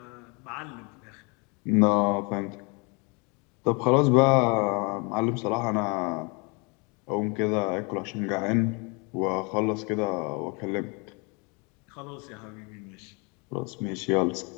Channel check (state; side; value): quieter; right; 31.1 dB